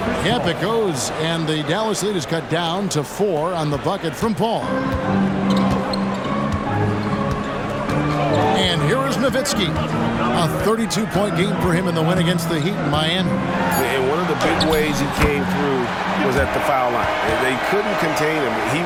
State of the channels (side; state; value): both; identical; correlation 1.00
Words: Yep, it goes, and the Dallas lead is cut down to 4 on the bucket from Paul. And here is Nowitzki. A 32-point game for him in the win against the Heat in Miami. And one of the big ways he came through was at the foul line. They couldn't contain him. He